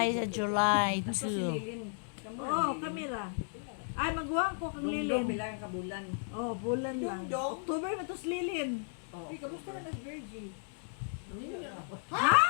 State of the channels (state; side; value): silent; right; digital silence